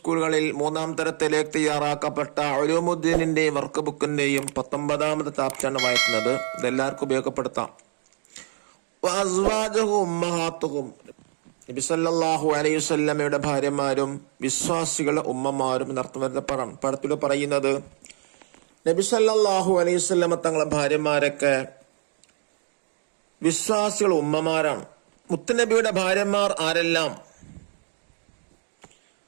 3-ാം തരത്തിലേക്ക് തയ്യാറാക്കപ്പെട്ട ഉലൂമുദ്ദീനിന്റെയും വർക്ക് ബുക്കിന്റെയും 19-ാമത്തെ ചാപ്റ്ററാണ് വായിക്കുന്നത്. ഇതെല്ലാവർക്കും ഉപയോഗപ്പെടുത്താം. വഅസ്വാജുഹു ഉമ്മഹാത്തുഹും, നബി സല്ലല്ലാഹു അലൈഹി വസല്ലമയുടെ ഭാര്യമാരും വിശ്വാസികളുടെ ഉമ്മമാരും എന്നർത്ഥം വരുന്ന പടത്തിൽ പറയുന്നത്, നബി സല്ലല്ലാഹു അലൈഹി വസല്ലമ തങ്ങളുടെ ഭാര്യമാരൊക്കെ വിശ്വാസികൾ ഉമ്മമാരാണ്. മുത്തുനബിയുടെ ഭാര്യമാർ ആരെല്ലാം,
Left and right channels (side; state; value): left; silent; digital silence